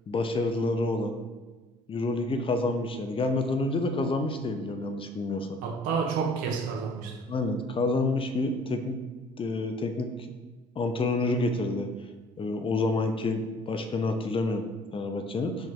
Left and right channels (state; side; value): normal; both; correlation 0.55